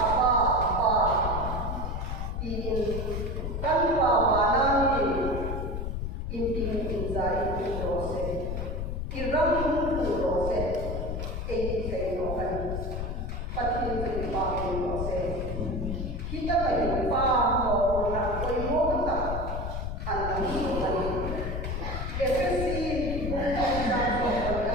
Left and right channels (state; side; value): noise; left; rumble, 3 dB below the sound